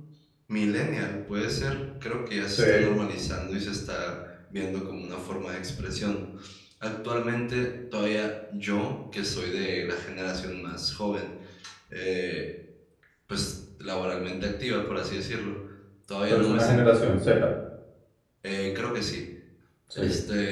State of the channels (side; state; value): both; identical; correlation 1.00